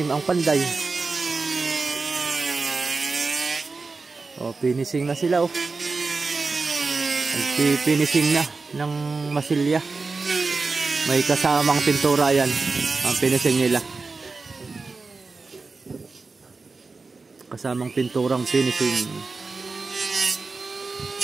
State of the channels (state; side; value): quieter; left; 4.1 dB